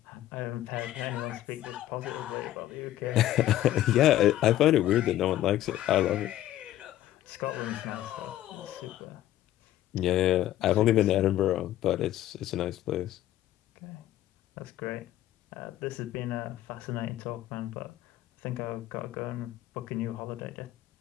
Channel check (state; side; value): quieter; right; 13.6 dB